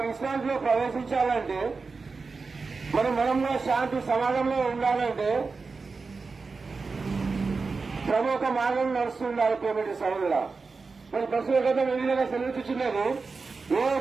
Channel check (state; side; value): quieter; left; 4.4 dB